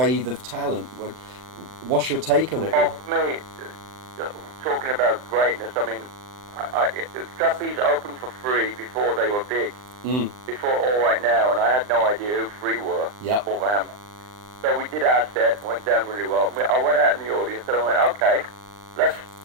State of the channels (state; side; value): late; left; 39 ms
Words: of talent. What's your take on it? Oh, for me, talking about greatness, I mean, Trapeze opened for Free before they were big, before All Right Now, and I had no idea who Free were. Yep. Wolverhampton. So we did our set, went down really well. I went out in the audience and I went, okay, let's